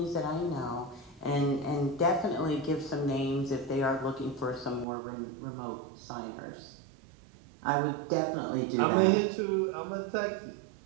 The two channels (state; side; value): drops out; left; at 4.9 s